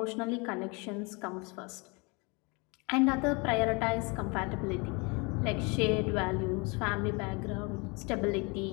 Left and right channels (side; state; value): right; quieter; 29.5 dB